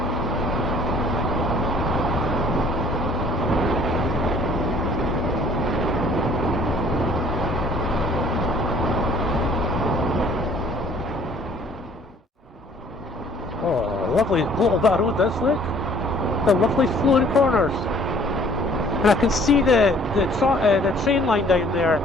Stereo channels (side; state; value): both; normal; correlation 0.57